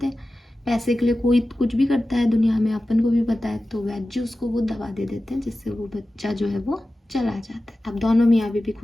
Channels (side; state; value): both; normal; correlation 0.95